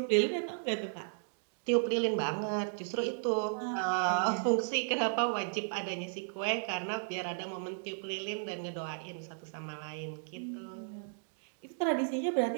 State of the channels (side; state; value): left; silent; digital silence